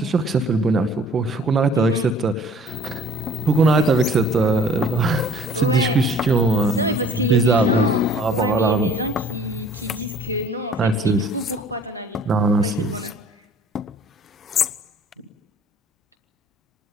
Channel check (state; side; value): normal; both; correlation 0.51